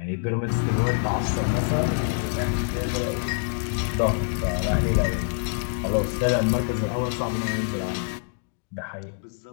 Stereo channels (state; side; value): silent; right; digital silence